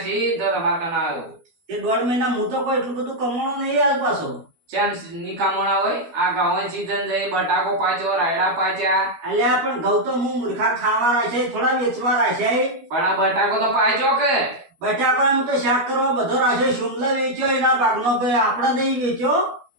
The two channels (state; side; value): late; left; 12 ms